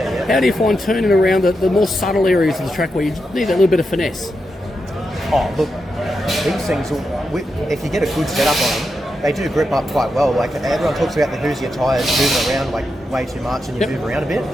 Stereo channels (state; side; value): normal; both; correlation 0.86